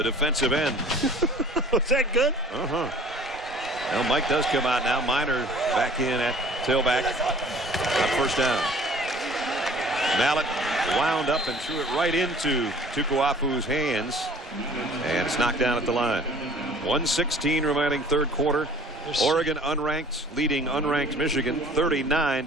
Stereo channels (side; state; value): both; normal; correlation 0.49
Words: defensive end. Was that good? Uh-huh. Well, Mike does come out now. Minor back in at tailback. On first down. Mallett wound up and threw it right into Tukuafu's hands, and it's knocked down at the line. 1:16 remaining 3rd quarter. Oregon unranked, leading unranked Michigan